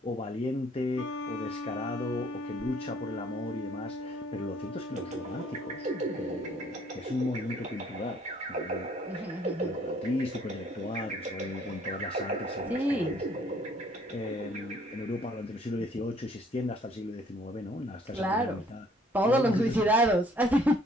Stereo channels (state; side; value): normal; both; correlation 0.60